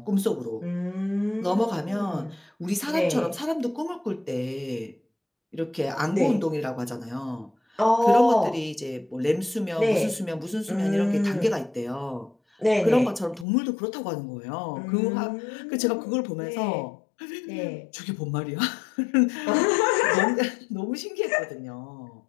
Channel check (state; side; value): drops out; right; at 13.5 s